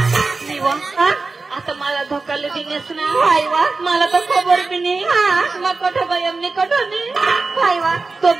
आता मला धोकाले देण्यास ना वा मला तर खबर बी नाही मग कठ गयमने कठोने वा तो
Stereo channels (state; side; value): quieter; left; 3.9 dB